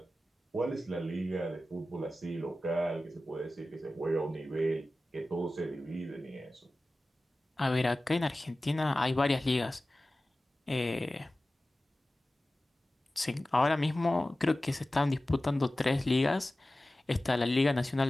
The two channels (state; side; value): normal; both; correlation 0.96